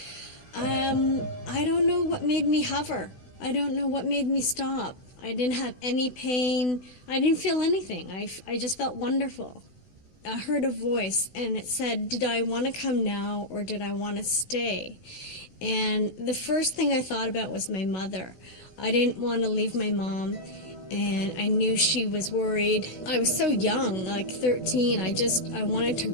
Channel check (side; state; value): right; late; 16 ms